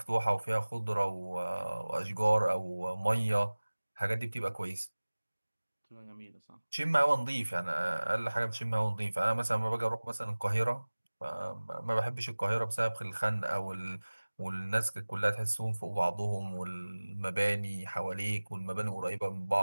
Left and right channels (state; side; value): inverted; both; correlation -1.00